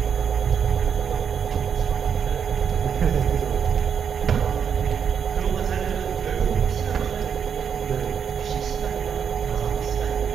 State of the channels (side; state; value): left; quieter; 7.4 dB